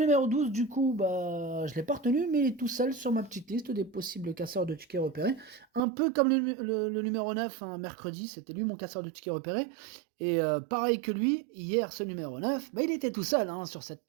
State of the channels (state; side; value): drops out; left; at 5.8 s